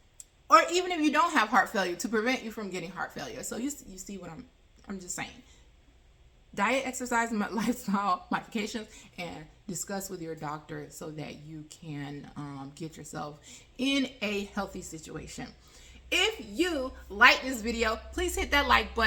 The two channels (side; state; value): both; identical; correlation 1.00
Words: Or even if you don't have heart failure, to prevent you from getting heart failure. So you see what I'm just saying. Diet, exercise, and lifestyle modifications, and discuss with your doctor so that you can get yourself in a healthy situation. If you like this video, please hit that like